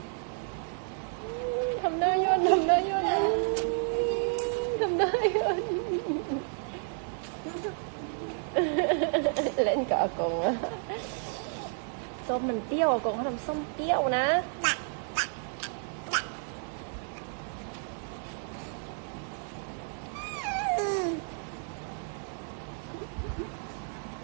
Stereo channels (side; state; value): left; silent; 57 dB below the other